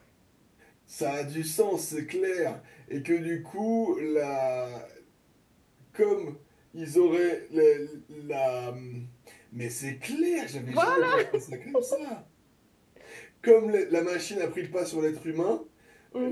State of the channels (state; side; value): identical; both; correlation 1.00